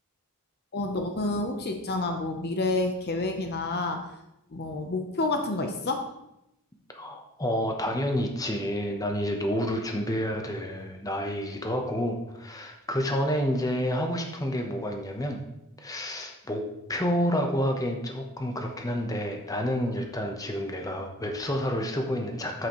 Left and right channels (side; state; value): both; normal; correlation 0.51